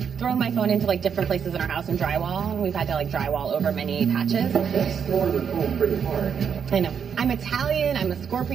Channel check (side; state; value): left; quieter; 7.2 dB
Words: thrown my phone into like different places in our house and drywall, and we've had to like drywall over many patches. That's throwing the phone pretty hard. I know. I'm Italian. I'm a